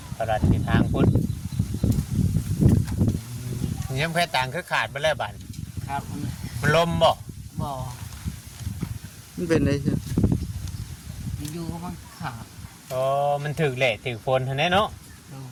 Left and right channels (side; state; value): both; identical; correlation 1.00